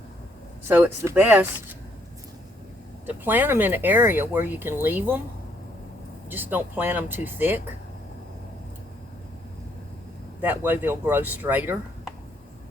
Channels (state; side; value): normal; both; correlation 0.70